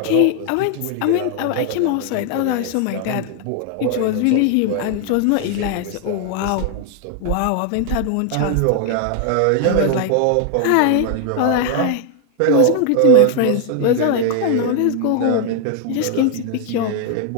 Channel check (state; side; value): different; both; correlation 0.00